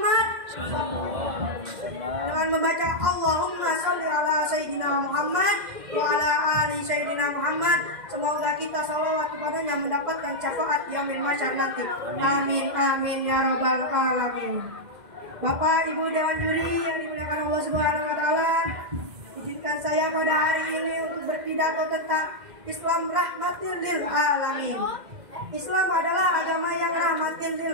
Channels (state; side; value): late; left; 2.1 ms